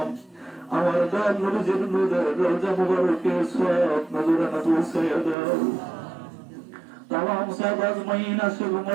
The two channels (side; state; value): left; drops out; at 5.4 s